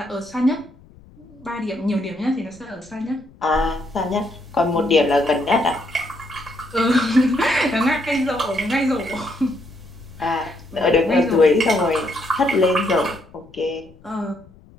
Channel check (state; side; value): noise; left; rumble, 25 dB below the sound